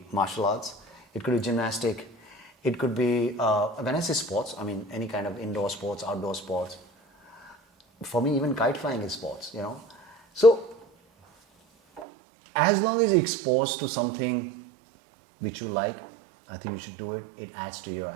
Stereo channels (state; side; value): drops out; left; at 12.1 s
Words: martial arts, it could be gymnastic, it could be, when I say sports, I mean any kind of indoor sports, outdoor sports. For me, even kite flying is sports, you know. So, as long as you're exposed to something which you like, I think you should do it. It adds to your